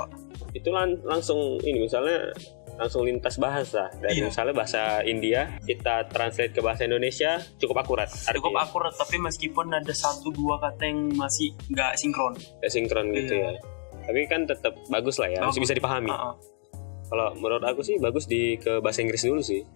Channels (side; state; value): right; silent; digital silence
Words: Itu langsung ini misalnya langsung lintas bahasa dari Iya. misalnya bahasa India kita translate ke bahasa Indonesia cukup akurat. Cukup Artinya akurat, tapi meskipun ada 1-2 kata yang masih nggak sinkron. nggak sinkron gitu Iya. ya. Tapi kan tetap bagus lah ya, masih bisa dipahami. Kalau menurut aku sih bagus ke bahasa Inggris dulu sih.